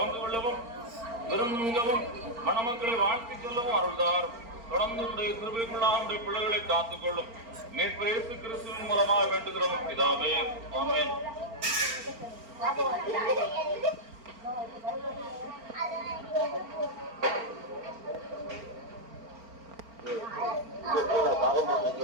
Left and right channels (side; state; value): left; late; 4.4 ms